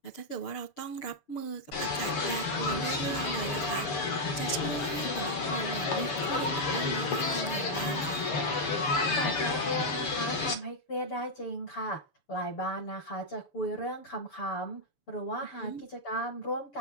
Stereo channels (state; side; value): late; right; 6.9 ms